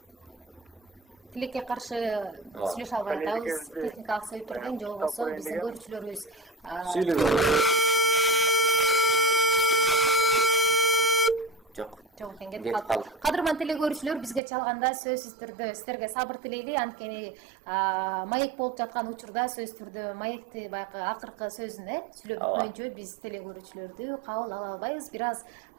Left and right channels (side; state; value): left; drops out; at 14.4 s